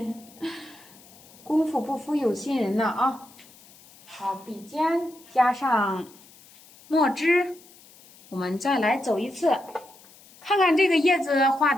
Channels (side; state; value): left; noise; hiss, 24 dB below the sound